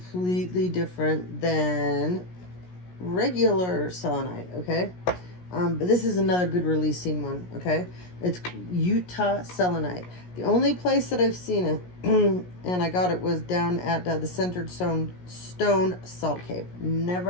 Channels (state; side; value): late; right; 17 ms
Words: different than regular selenite, okay? But this is another good releasing one, okay? It's Utah Selenite. The only place that I've seen it, and I got it, was down at the Centered Stone Salt Cave.